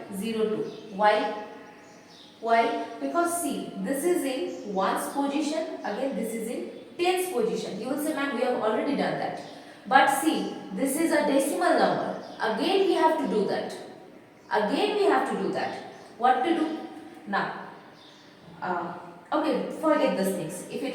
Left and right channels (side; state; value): both; identical; correlation 1.00